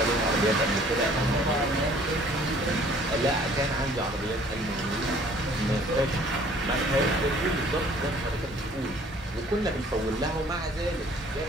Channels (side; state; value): both; normal; correlation 0.55